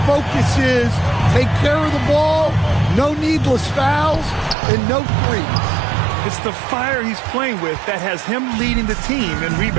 focus is take care of the ball, no needless fouls, and no threes. It's the fire he's playing with that has him leading the team in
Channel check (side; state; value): left; drops out; at 4.5 s